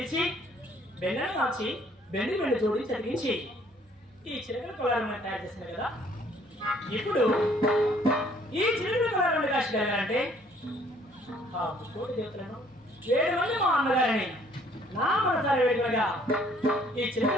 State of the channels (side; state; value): both; normal; correlation 0.61